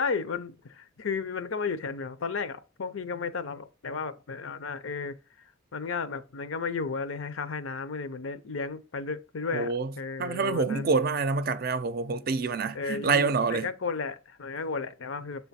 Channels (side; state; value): both; normal; correlation -0.02